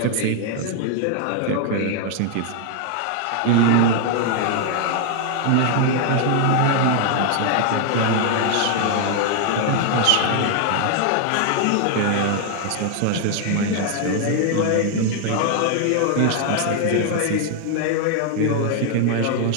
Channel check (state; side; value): different; both; correlation 0.00